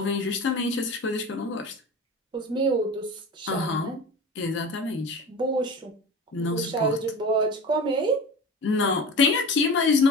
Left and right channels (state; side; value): normal; both; correlation 0.33